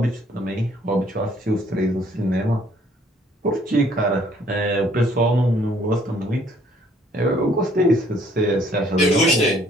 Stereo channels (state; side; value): normal; both; correlation 0.62